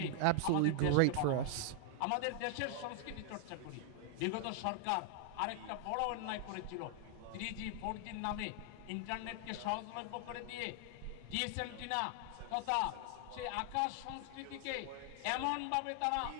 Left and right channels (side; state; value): both; different; correlation 0.00